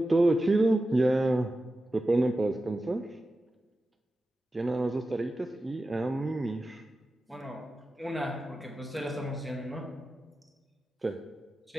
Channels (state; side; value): normal; both; correlation 0.93